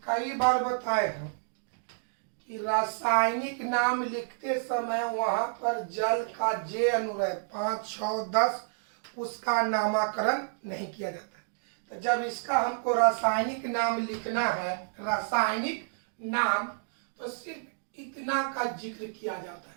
कई बार बताए हैं कि रासायनिक नाम लिखते समय वहां पर जल का जे अनुरय 5, 6, 10 उसका नामकरण नहीं किया जाता है। तो जब इसका हमको रासायनिक नाम लिखना है, रासायनिक नाम, तो सिर्फ इतना का जिक्र किया जाता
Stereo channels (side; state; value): left; silent; digital silence